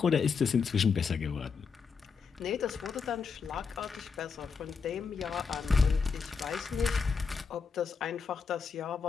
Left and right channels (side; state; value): right; quieter; 5.5 dB